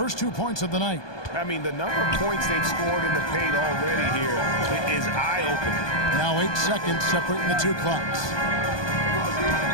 2 points of the night. I mean, the number of points they've scored in the paint already here is eye-opening. Now 8 seconds separating the 2 clocks.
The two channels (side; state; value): right; late; 1.2 ms